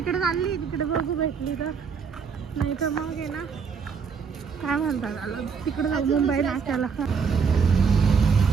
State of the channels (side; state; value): left; quieter; 5.9 dB